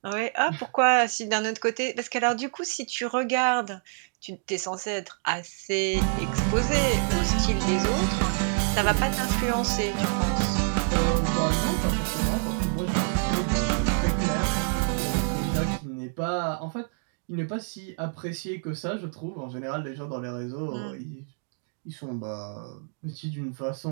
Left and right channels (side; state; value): left; silent; 60 dB below the other